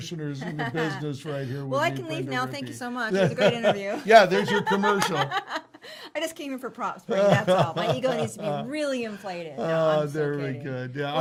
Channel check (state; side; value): identical; both; correlation 1.00